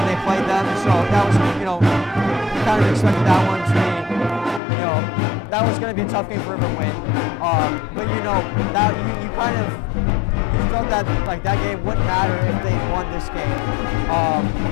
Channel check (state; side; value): drops out; right; at 4.6 s